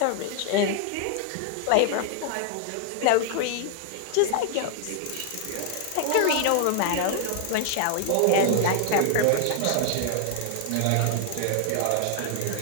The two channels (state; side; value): different; both; correlation 0.00